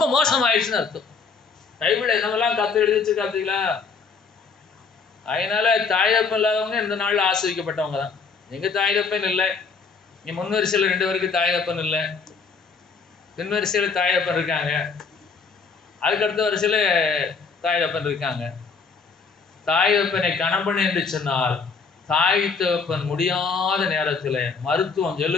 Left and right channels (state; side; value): quieter; right; 5.0 dB